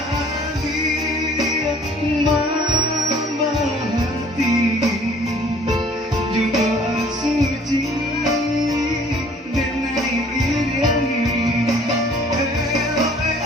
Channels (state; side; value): normal; both; correlation 0.55